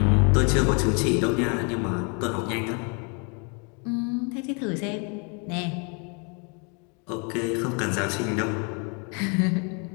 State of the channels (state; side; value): quieter; right; 35.2 dB